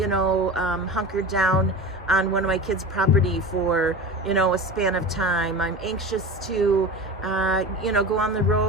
hunker down on one of my kids' property for a span of time. I'm anxious to go on the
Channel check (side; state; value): both; normal; correlation 0.30